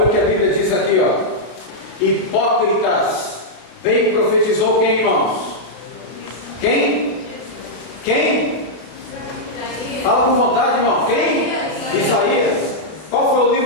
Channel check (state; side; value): late; right; 32 ms